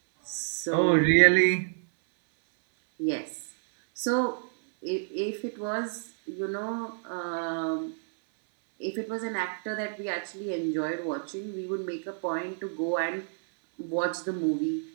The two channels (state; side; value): silent; left; 58 dB below the other